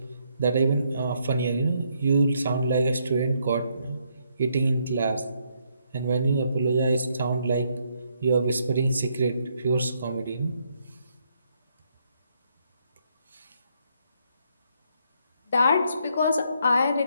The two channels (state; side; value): inverted; both; correlation -0.74